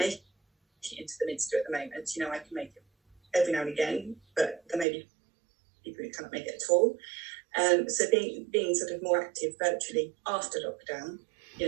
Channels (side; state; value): left; drops out; at 4.9 s